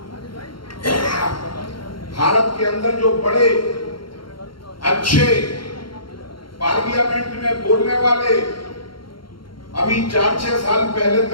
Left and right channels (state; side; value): late; right; 0.73 ms